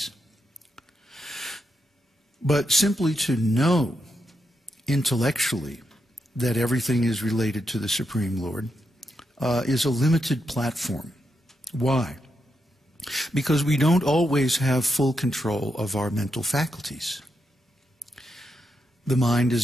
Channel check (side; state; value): both; normal; correlation 0.84